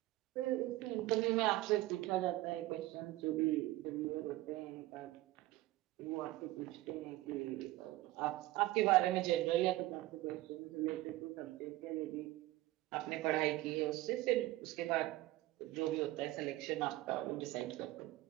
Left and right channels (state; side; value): quieter; left; 17.4 dB